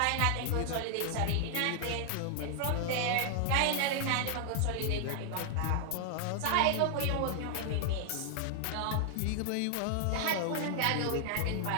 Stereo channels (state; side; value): different; both; correlation 0.00